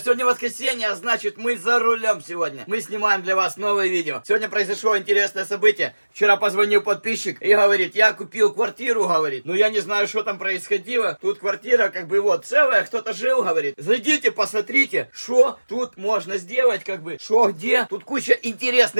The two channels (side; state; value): both; inverted; correlation -1.00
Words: воскресенье, а значит мы за рулем сегодня. Мы снимаем для вас новое видео. Сегодня произошло интересное событие. Вчера позвонил подписчик и говорит, я купил квартиру, говорит. Ну я не знаю, что там происходило. Тут квартира как бы вот целая, кто-то жил, говорит. Зайдите, посмотрите, что тут можно сделать, как бы, что где. Тут куча